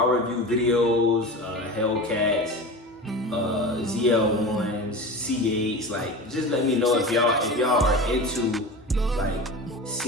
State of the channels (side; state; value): both; normal; correlation 0.30